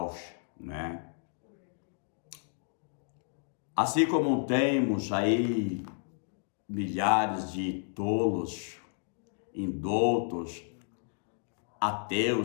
né? Assim como temos aí milhares de tolos, indoutos,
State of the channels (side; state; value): right; silent; digital silence